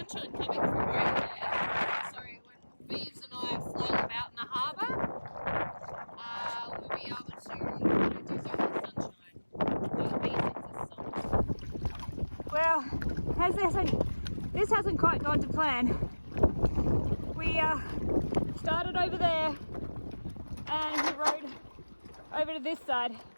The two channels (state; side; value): inverted; both; correlation -1.00